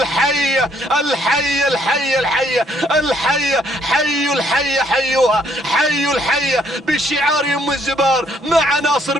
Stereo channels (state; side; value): normal; both; correlation 0.67